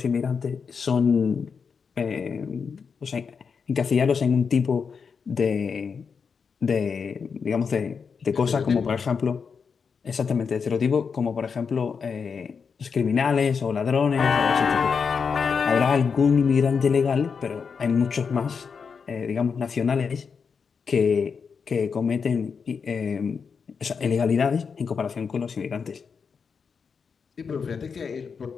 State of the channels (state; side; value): quieter; right; 5.9 dB